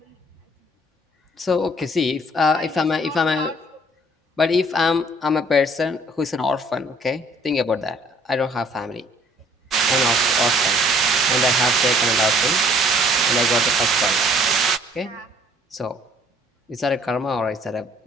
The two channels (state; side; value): normal; both; correlation 0.59